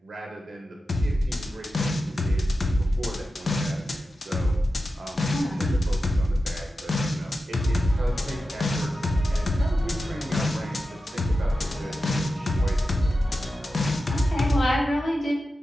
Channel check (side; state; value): both; normal; correlation 0.92